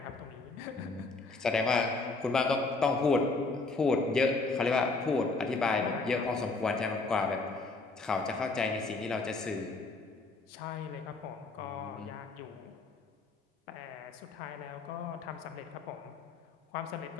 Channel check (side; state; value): right; quieter; 3.6 dB